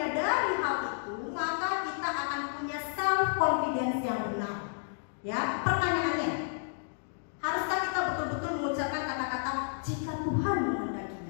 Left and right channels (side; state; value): right; silent; digital silence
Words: hal itu, maka kita akan punya self confidence yang benar. Ya, pertanyaannya, haruskah kita betul-betul mengucapkan kata-kata jika Tuhan